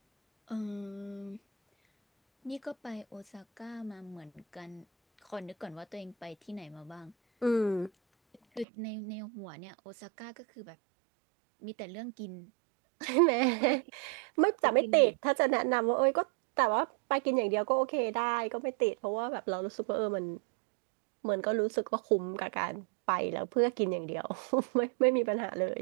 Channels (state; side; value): drops out; left; at 8.7 s